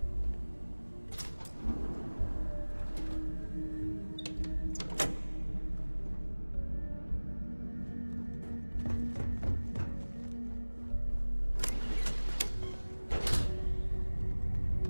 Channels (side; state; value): both; inverted; correlation -1.00